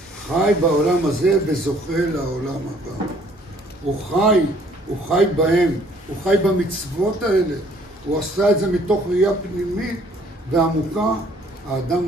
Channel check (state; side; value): normal; both; correlation 0.60